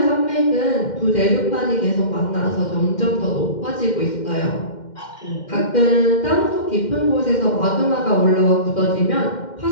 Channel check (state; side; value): late; right; 2.1 ms